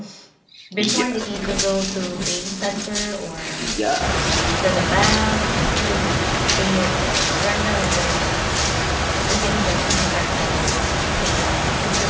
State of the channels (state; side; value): identical; both; correlation 1.00